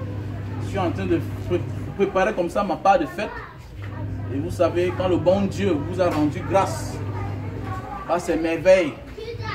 je suis en train de préparer comme ça ma part de fête. Et vous savez, quand le bon Dieu vous a rendu grâce à ces merveilles,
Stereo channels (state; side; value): identical; both; correlation 1.00